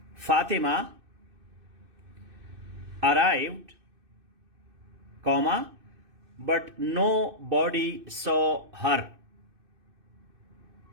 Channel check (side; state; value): left; late; 2.6 ms